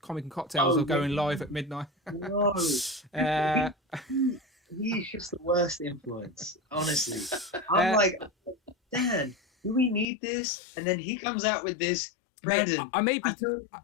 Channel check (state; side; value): drops out; right; at 10.1 s